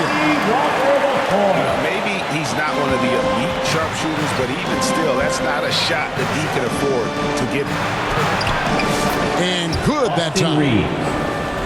Maybe he's not one of the elite sharpshooters, but even still, that's not a shot that he can afford to give. And good that time.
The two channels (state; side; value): identical; both; correlation 1.00